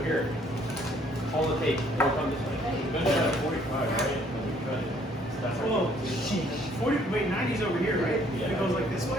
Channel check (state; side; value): normal; both; correlation 0.62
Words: here, all the tape will come this way. You're gonna have 45, right? When we cut it. So that's right. Oh, sheesh. 40, wait, 90's over here, right? Yeah. It goes like this